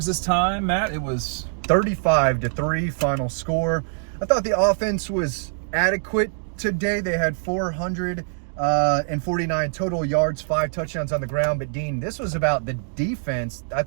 this time, Matt. It was 35-3 final score. I thought the offense was adequate today. They had 449 total yards, 5 touchdowns on the ground. But, Dean, this was about the defense. I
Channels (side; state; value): left; silent; digital silence